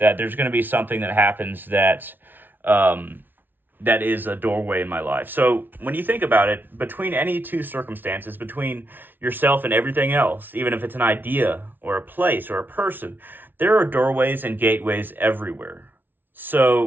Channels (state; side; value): late; left; 0.092 ms